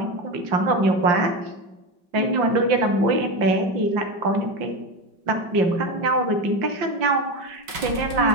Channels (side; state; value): left; late; 5.4 ms